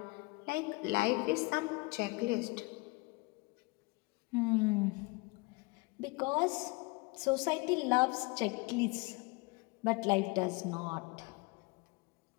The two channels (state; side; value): quieter; right; 25.9 dB